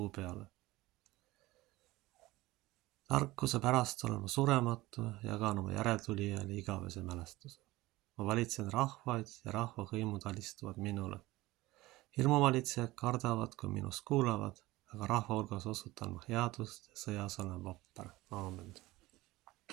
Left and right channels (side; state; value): left; quieter; 19.1 dB